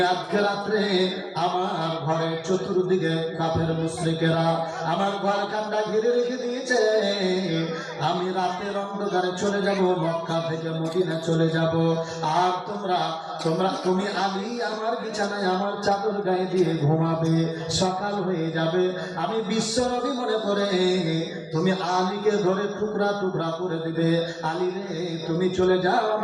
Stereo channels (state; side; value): identical; both; correlation 1.00